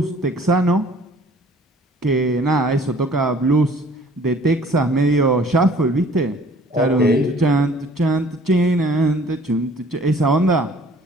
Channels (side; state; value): both; normal; correlation 0.53